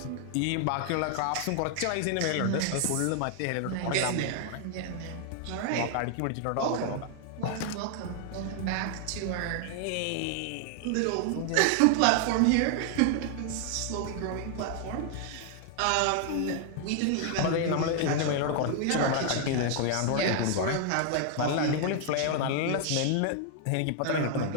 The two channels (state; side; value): different; both; correlation 0.00